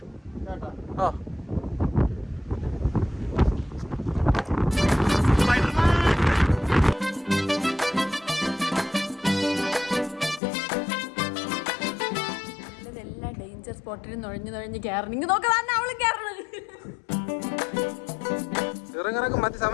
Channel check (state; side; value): drops out; right; at 10.4 s